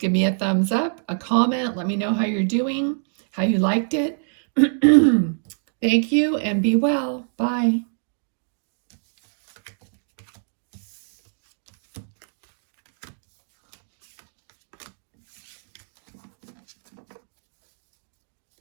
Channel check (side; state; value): left; silent; digital silence